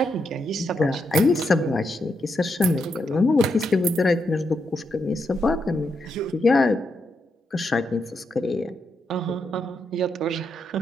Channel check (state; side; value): normal; both; correlation 0.82